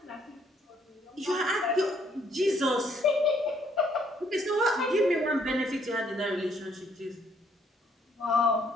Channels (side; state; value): both; normal; correlation 0.67